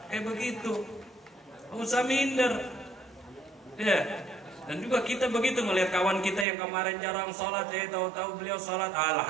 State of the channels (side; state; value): left; drops out; at 6.5 s